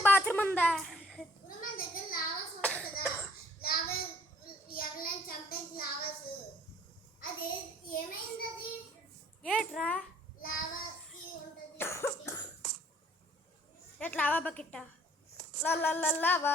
బాత్రూమ్ ఉందా? ఇప్పుడు మన దగ్గర లావాస్ ఉంటుంది కదా, లావా ఎవరైనా చంపేసి లావాస్ అది ఏమైంది? అది ఏట్రా లావాకి ఉంటుంది. ఎట్లా లావా బకెట్ట lava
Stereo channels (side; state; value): both; normal; correlation 0.57